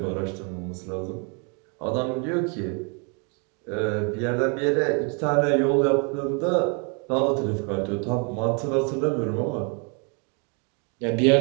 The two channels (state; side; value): quieter; left; 36.1 dB